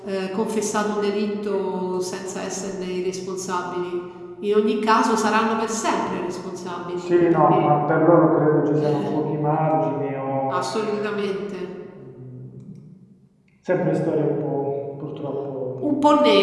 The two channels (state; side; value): identical; both; correlation 1.00